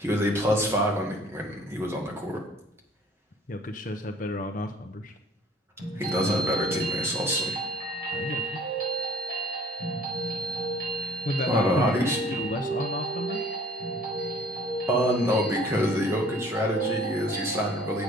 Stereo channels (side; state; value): both; normal; correlation 0.54